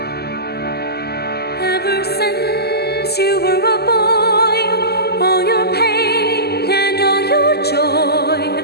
Ever since you were a boy, all your pain and all your joy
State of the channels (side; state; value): right; late; 0.46 ms